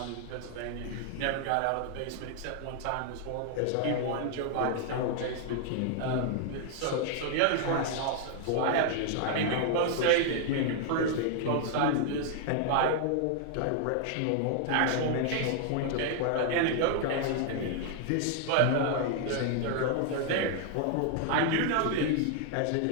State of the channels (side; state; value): both; different; correlation 0.00